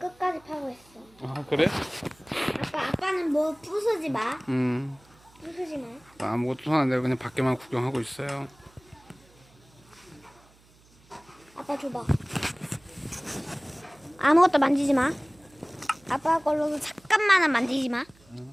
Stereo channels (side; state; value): right; noise; hum, 29 dB below the sound